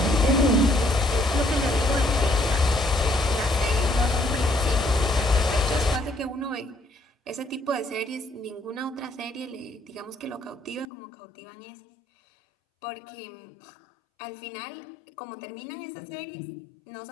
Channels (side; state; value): right; drops out; at 10.9 s